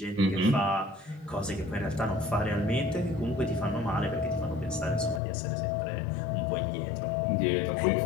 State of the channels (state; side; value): drops out; right; at 5.2 s